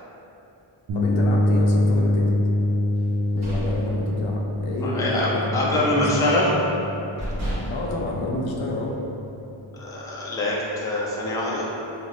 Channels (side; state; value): both; normal; correlation 0.50